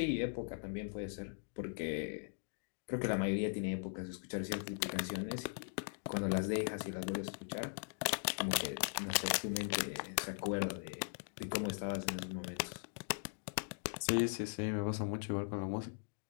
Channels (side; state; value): right; silent; digital silence